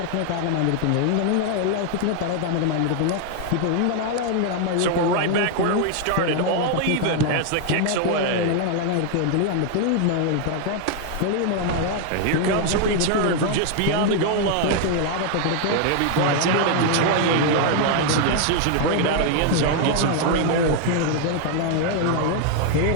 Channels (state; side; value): different; both; correlation 0.00